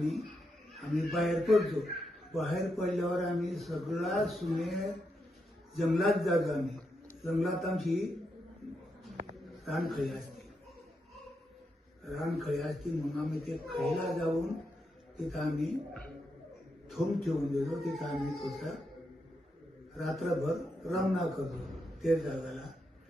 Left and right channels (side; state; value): both; normal; correlation 0.83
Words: आम्ही बाहेर पडतो. बाहेर पडल्यावर आम्ही सगळा सुने जंगलात जातो. आम्ही जंगलात आमची रानखळी असते. रानखळी असते मग आम्ही ते खळीला जाऊन तिथं आम्ही थोम ठेवून देतो. तिथं आम्ही थोडसा रात्रभर रमणा करतो ते जागाला.